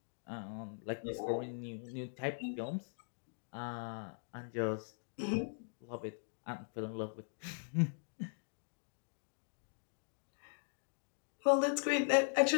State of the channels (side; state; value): right; silent; digital silence